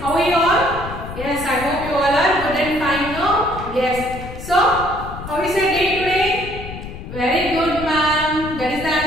are you all? Yes, I hope you all are good and fine now. Yes. So, how is your day today? Very good, ma'am. That is the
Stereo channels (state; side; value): noise; left; rumble, 11 dB below the sound